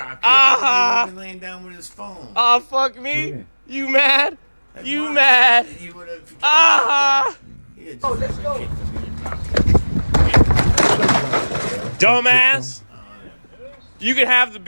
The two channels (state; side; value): inverted; both; correlation -1.00